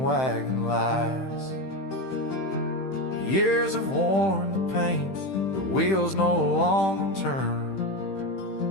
wagon lies. Years have worn the paint, the wheels no longer turn,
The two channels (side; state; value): right; late; 15 ms